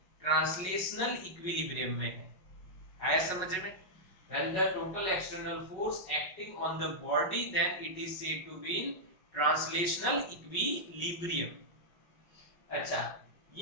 ट्रांसलेशनल इक्विलिब्रियम में है। आया समझ में? When the total external force acting on the body, then it is said to be in translational equilibrium. अच्छा,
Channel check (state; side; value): late; right; 5.4 ms